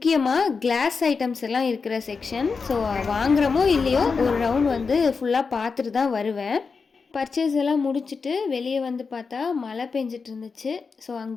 கிளாஸ் ஐட்டம்ஸ் எல்லாம் இருக்கிற செக்ஷன். ஸோ வாங்குகிறோமோ இல்லையோ ஒரு ரவுண்ட் வந்து ஃபுல்லாக பார்த்துட்டு தான் வருவேன். பர்ச்சேஸ் எல்லாம் முடிச்சுட்டு வெளியே வந்து பார்த்தா மழை பெஞ்சிட்டு இருந்துச்சு. ஸோ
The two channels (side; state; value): right; quieter; 5.0 dB